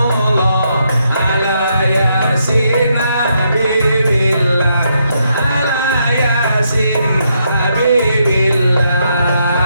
ala yasin habibillah. Ala yasin habibillah.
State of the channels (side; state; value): both; inverted; correlation -0.78